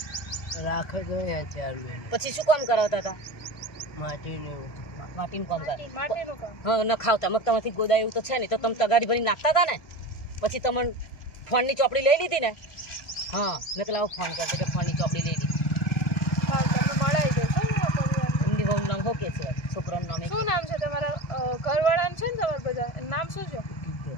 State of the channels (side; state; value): right; late; 1.5 ms